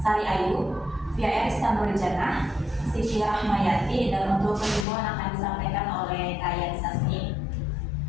Ayu, Via Istanbul Jannah, Siti Rahmayati, dan untuk kesimpulan akan disampaikan oleh Kaya Sasmi.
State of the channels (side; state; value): right; drops out; at 4.9 s